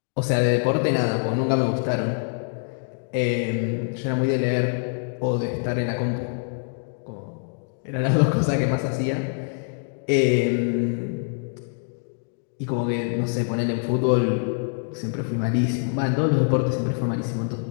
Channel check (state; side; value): silent; right; 62 dB below the other